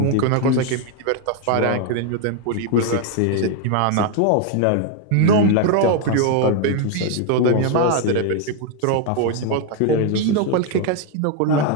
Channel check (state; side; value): different; both; correlation 0.01